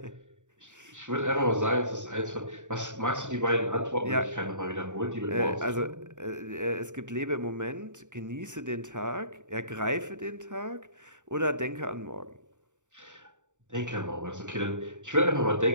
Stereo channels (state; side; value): late; left; 0.85 ms